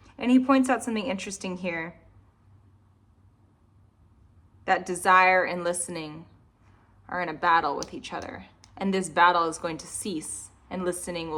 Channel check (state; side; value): identical; both; correlation 1.00